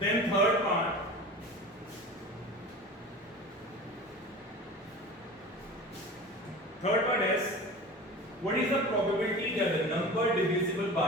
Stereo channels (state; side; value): normal; both; correlation 0.36